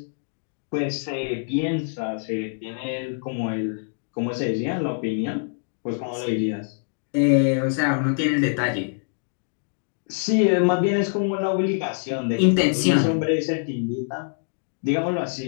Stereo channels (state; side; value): silent; right; digital silence